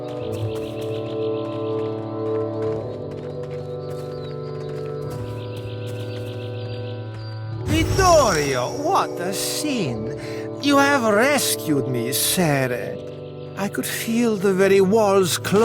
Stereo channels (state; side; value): identical; both; correlation 1.00